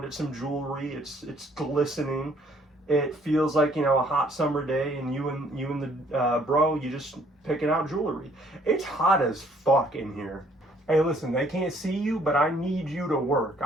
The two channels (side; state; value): both; normal; correlation 0.63